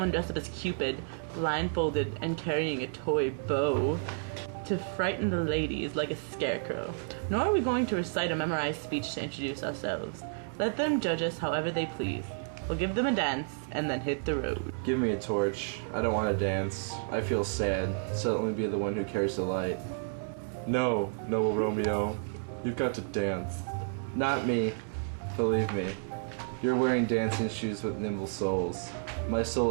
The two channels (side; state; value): left; silent; 57 dB below the other